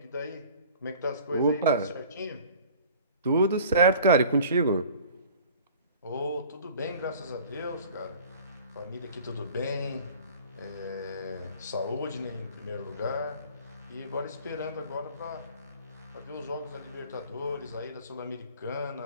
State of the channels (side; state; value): both; inverted; correlation -0.47